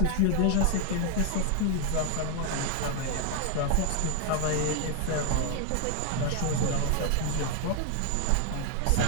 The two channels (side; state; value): both; different; correlation 0.00